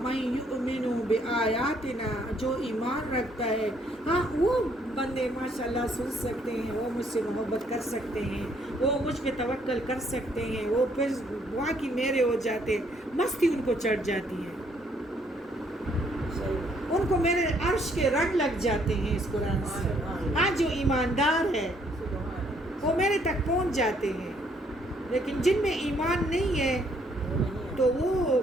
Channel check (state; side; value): normal; both; correlation 0.67